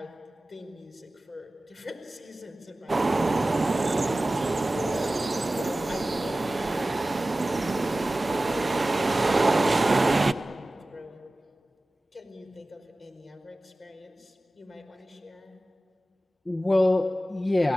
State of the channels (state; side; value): normal; both; correlation 0.96